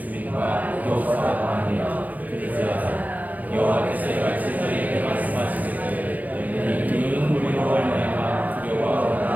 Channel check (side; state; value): left; late; 0.078 ms